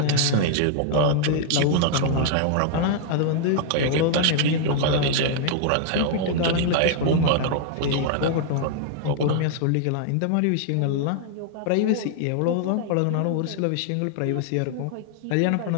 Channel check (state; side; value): different; both; correlation -0.01